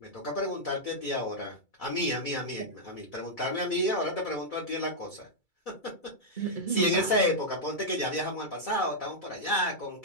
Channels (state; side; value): late; right; 2.3 ms